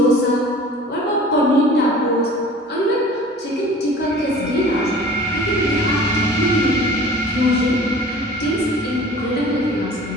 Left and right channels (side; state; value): both; normal; correlation 0.44